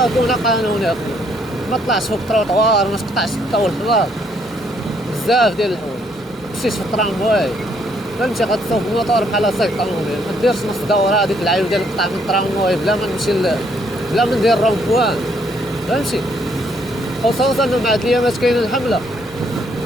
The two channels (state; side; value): normal; both; correlation 0.69